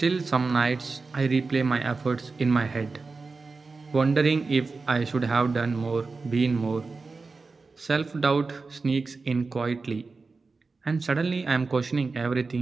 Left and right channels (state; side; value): quieter; left; 4.1 dB